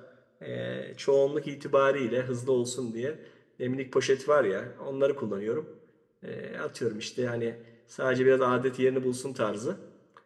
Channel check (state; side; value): identical; both; correlation 1.00